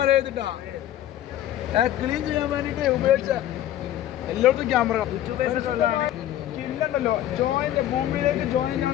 ക്ലീൻ ചെയ്യാൻ വേണ്ടിട്ട് ഉപയോഗിച്ച എല്ലായിടത്തും ക്യാമറ കില്ലുണ്ടല്ലോ, ജോയിന്റ് ഭൂമിയിലേക്ക് ജോയിൻ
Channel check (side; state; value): right; quieter; 12.4 dB